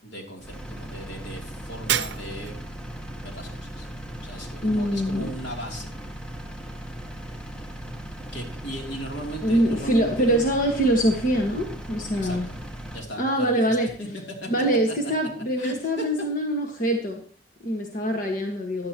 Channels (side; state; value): both; normal; correlation 0.41